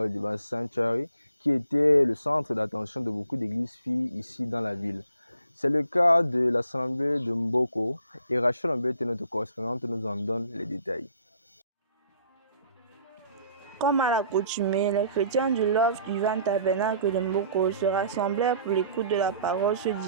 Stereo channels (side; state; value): both; inverted; correlation -0.58